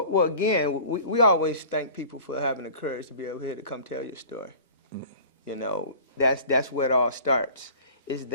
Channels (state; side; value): inverted; both; correlation -0.44